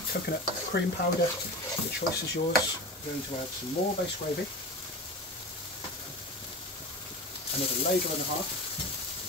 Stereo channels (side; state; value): both; normal; correlation 0.29